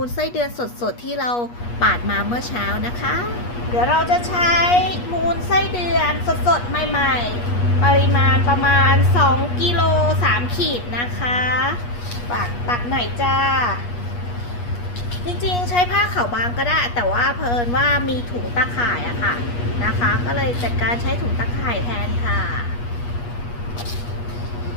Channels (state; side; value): late; right; 8.3 ms